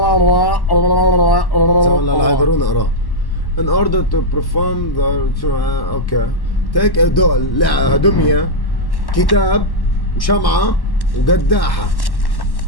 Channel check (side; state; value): right; late; 1.1 ms